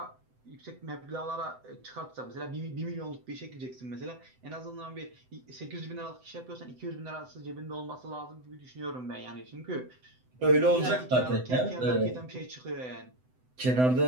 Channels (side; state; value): left; late; 7.9 ms